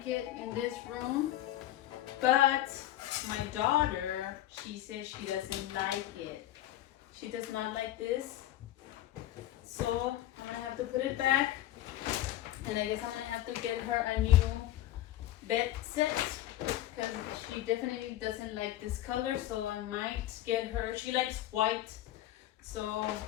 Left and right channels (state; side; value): quieter; right; 13.9 dB